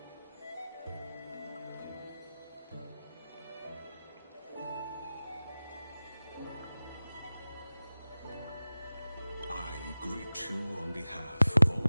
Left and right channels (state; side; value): inverted; both; correlation -0.96